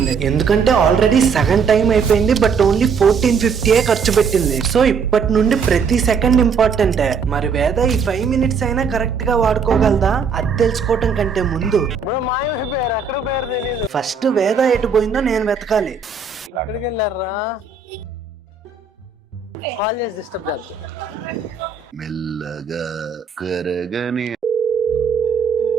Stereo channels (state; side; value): quieter; left; 5.6 dB